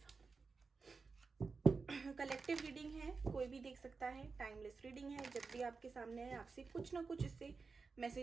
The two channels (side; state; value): left; quieter; 4.6 dB